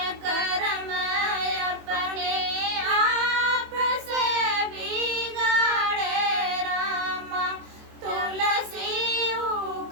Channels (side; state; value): left; late; 24 ms